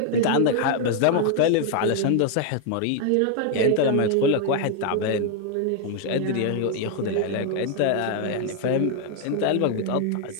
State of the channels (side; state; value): both; different; correlation 0.00